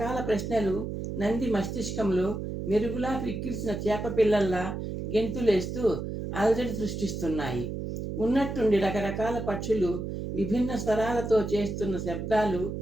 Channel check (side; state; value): right; noise; hum, 5 dB below the sound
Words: ప్రశ్నలు నంది మస్తిష్కంలో మెరుగులా క్రిక్కిరిసిన చేప పిల్లల్లా గెంతులేస్తూ అలజడి సృష్టిస్తున్నాయి. ఉన్నట్టుండి రకరకాల పక్షులు విభిన్న స్వరాలతో చేస్తున్న శబ్దాలు